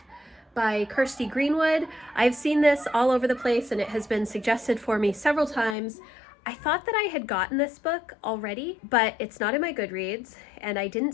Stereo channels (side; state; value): right; drops out; at 5.8 s